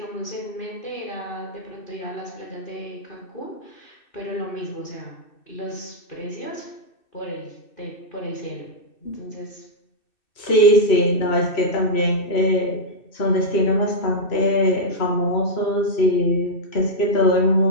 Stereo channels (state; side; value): late; right; 2.6 ms